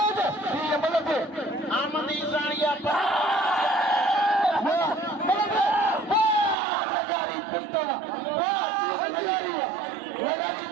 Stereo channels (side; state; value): left; drops out; at 6.6 s